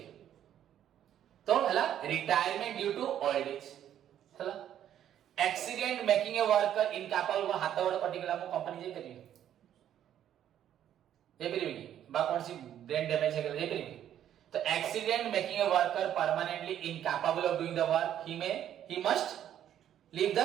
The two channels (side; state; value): left; quieter; 10.6 dB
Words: तो हला retirement due to old age हला accident making a worker incapable को हाथ गोड़ कटि गेला मु कंपनी जे करियो ए परिबे की बा कोन सी ब्रेन डैमेज हे गेला ए परिबे तो accident making a worker permanently incapable of doing the work he must leave the